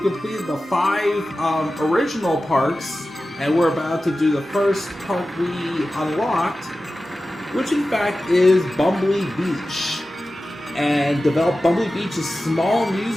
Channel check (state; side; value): normal; both; correlation 0.94